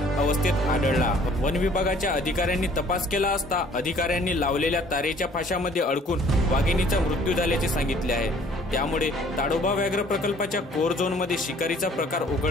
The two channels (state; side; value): normal; both; correlation 0.56